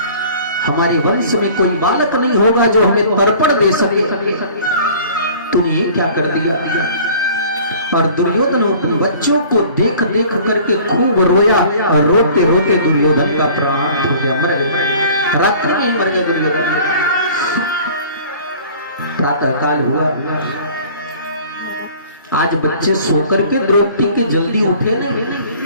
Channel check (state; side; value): inverted; both; correlation -0.48